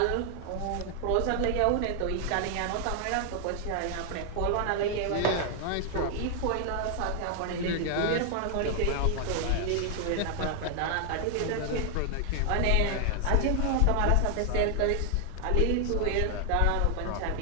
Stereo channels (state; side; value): different; both; correlation 0.00